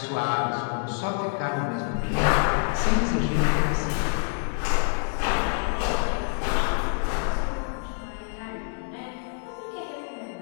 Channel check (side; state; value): right; silent; 61 dB below the other